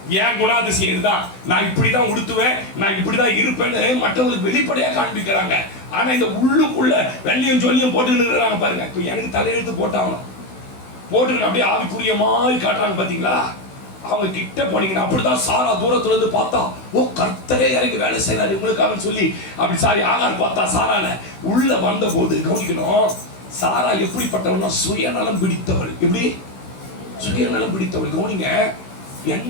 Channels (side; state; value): right; late; 16 ms